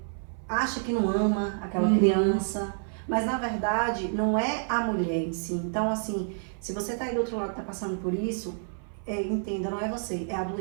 acha que não ama aquela criança, mas na verdade não é a mulher em si. Então, assim, se você tá aí do outro lado, tá passando por isso, entenda, não é você, é a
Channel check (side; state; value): left; silent; 56 dB below the other